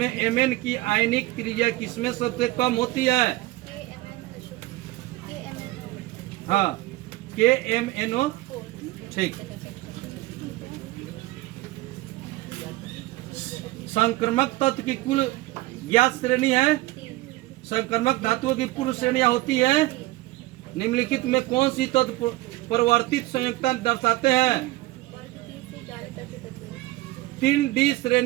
एमएन की आयनिक क्रिया किसमें सबसे कम होती है? हाँ, KMNO। ठीक। संक्रमक तत्व की कुल ज्ञात श्रेणी है। संक्रमक धातुओं की पूर्व श्रेणियां होती है। निम्नलिखित में कौन सी तत्व परिवर्तित संयुक्ता दर्शाते हैं? 3D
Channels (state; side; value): quieter; left; 18.8 dB